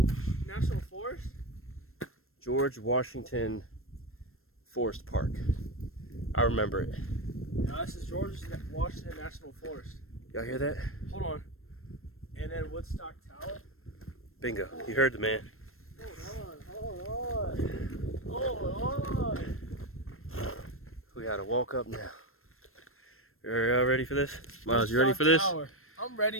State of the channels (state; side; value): late; right; 0.62 ms